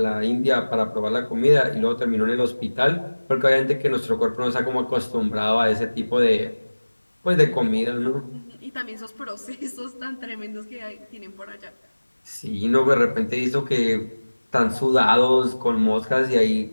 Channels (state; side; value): inverted; both; correlation -1.00